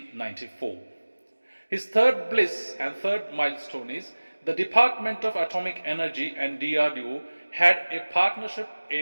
His third bliss and third milestone is the Department of Atomic Energy and DRDO had a partnership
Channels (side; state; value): both; inverted; correlation -1.00